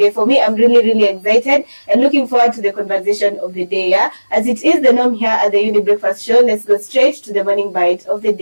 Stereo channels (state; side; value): inverted; both; correlation -1.00